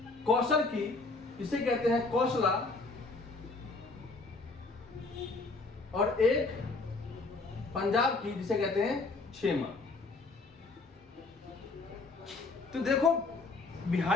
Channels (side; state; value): right; quieter; 3.6 dB